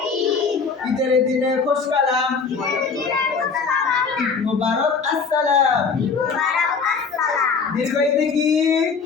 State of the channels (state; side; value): quieter; right; 5.2 dB